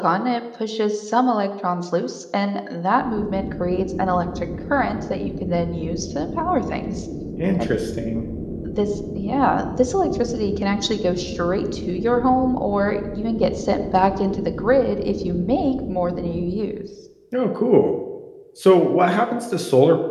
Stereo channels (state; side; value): identical; both; correlation 1.00